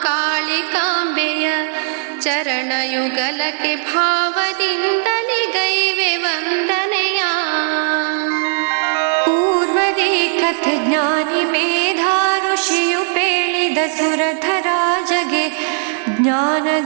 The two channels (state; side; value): silent; left; 65 dB below the other